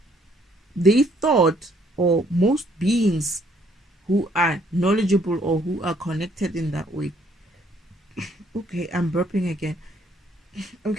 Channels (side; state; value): both; normal; correlation 0.66